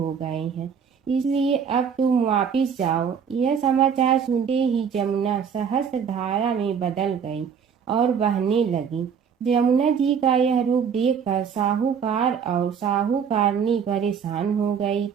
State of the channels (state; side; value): quieter; left; 7.1 dB